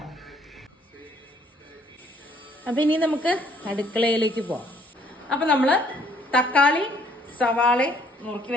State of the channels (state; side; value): normal; both; correlation 0.63